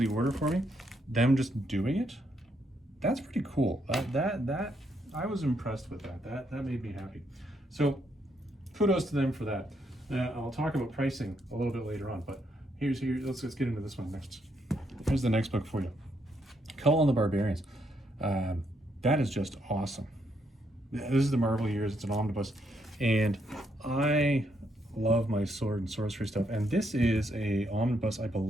order for me? Them just doing it, that's pretty cool. That I was impressed with that. That made me happy. So kudos to them for that. I'll talk about pricing a little bit later on, but let's get into this one next. Here's the next book for you. Conan the Barbarians. That is just awesome. This is the Marvel years. It's an omnibus, and I love my sword and sorcery stuff. And this is a omnibus, I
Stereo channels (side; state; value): both; normal; correlation 0.76